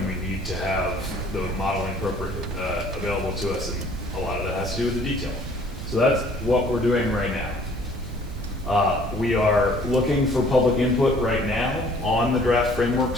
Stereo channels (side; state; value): both; normal; correlation 0.56